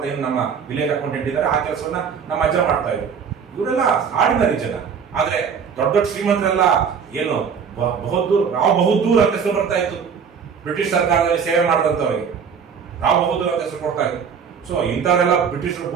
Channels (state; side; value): quieter; left; 6.6 dB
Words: ಏನು ನಮ್ಮ ವಿಲೇಜ್ ಅಕೌಂಟೆಂಟ್ ಇದ್ದಾರೆ, ಆ ಕೆಲಸವನ್ನ ನಮ್ಮ ಅಜ್ಜ ಮಾಡ್ತಾ ಇದ್ರು. ಇವರೆಲ್ಲ ಆರ್ಡಿನರಿ ಜನ. ಆದ್ರೆ ದೊಡ್ಡ ದೊಡ್ಡ ಶ್ರೀಮಂತರೆಲ್ಲ ಏನು ರಾವ್ ಬಹದ್ದೂರ್ ಅಂತ ಹೆಸರು ಬರ್ತಾ ಇತ್ತು. ಬ್ರಿಟಿಷ್ ಸರ್ಕಾರದಲ್ಲಿ ಸೇವೆ ಮಾಡಿದಂಥವ್ರಿಗೆ ರಾವ್ ಬಹದ್ದೂರ್ ಅಂತ ಹೆಸರು ಕೊಡ್ತಾ ಇತ್ತು. ಸೊ ಇಂಥವರೆಲ್ಲ ಬ್ರಿಟಿಷರು